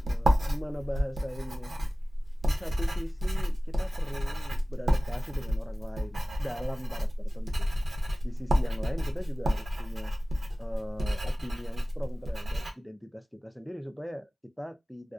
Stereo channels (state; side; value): normal; both; correlation 0.97